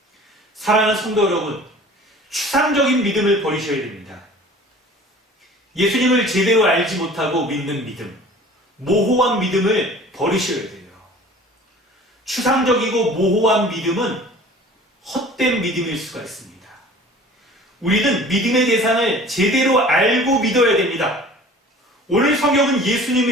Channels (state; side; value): normal; both; correlation 0.46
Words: 사랑하는 성도 여러분, 추상적인 믿음을 버리셔야 됩니다. 예수님을 제대로 알지 못하고 믿는 믿음, 모호한 믿음을 버리셔야 돼요. 추상적이고 모호한 믿음은 헛된 믿음일 수가 있습니다. 우리는 믿음의 대상을 제대로 알고 믿어야 됩니다. 오늘 성경은